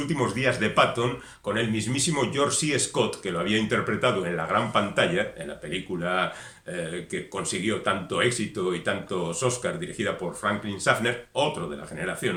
días de Patton con el mismísimo George C. Scott, que lo había interpretado en la gran pantalla, en la película que consiguió tanto éxito y tantos Oscars, dirigida por Franklin Schaffner, otro de la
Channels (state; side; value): identical; both; correlation 1.00